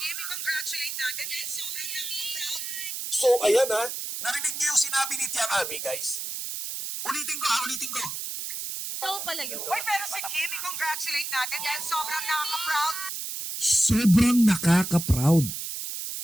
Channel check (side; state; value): right; noise; hiss, 5 dB below the sound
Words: congratulate natin. So, ayan narinig niyo yung sinabi ni Tiang Abi, guys. Ulitin ko. Uy, pero si Kimi, congratulate natin dahil sobrang nakaka-proud. Sobrang nakaka-proud.